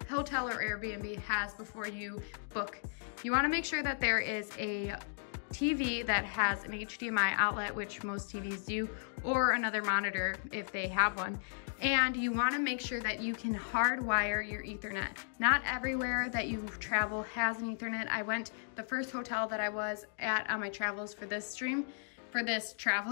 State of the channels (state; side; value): silent; right; digital silence